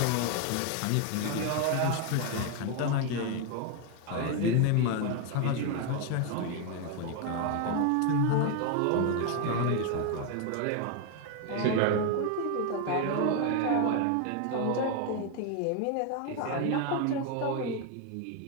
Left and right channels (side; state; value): both; different; correlation 0.01